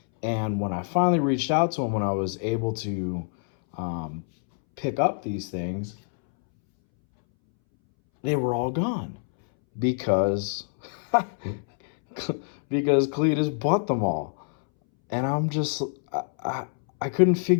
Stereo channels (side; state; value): right; silent; 61 dB below the other